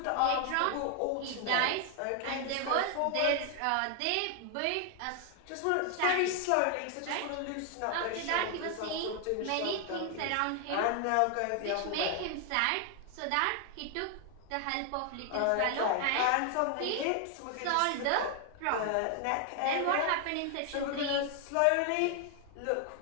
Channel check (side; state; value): both; different; correlation 0.00